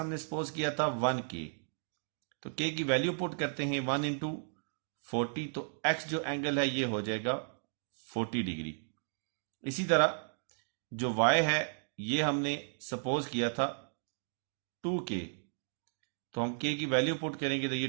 सपोज किया था 1k, तो k की वैल्यू पुट करते हैं 1 इंटू 40, तो x जो एंगल है ये हो जाएगा 40 डिग्री। इसी तरह जो y है ये हमने सपोज किया था 2k, तो हम k की वैल्यू पुट करेंगे तो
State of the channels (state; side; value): silent; left; digital silence